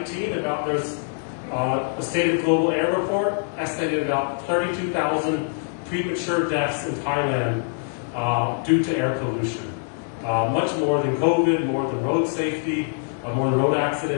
there's a State of Global Air report estimated about 32,000 premature deaths in Thailand due to air pollution. much more than COVID, more than road safety, more than road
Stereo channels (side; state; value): right; silent; 59 dB below the other